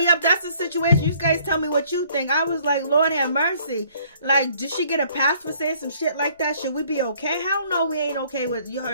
that's the situation. You guys tell me what you think. I was like, Lord have mercy. Like, did she get a pass for saying some shit like that? Should we be okay? Hell no, we ain't okay with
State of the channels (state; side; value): inverted; both; correlation -0.60